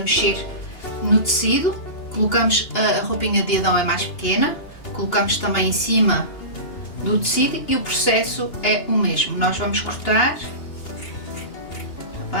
mexer no tecido. Colocamos, a roupinha de Adão é mais pequena, colocamos também em cima do tecido e o processo é o mesmo. Nós vamos cortar, está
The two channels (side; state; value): right; late; 2.8 ms